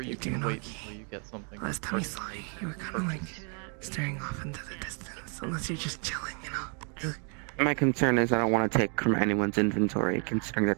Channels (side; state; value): left; quieter; 39.8 dB